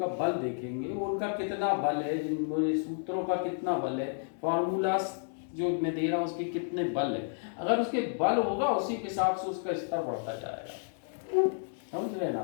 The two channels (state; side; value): silent; right; digital silence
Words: बल देखेंगे, वो उनका कितना बल है, जिन मेरे सूत्रों का कितना बल है, फॉर्मूला जो मैं दे रहा हूं उसके कितने बल है। अगर उसके बल होगा उसी के हिसाब से उसका स्तर बढ़ता जाएगा। समझ रहे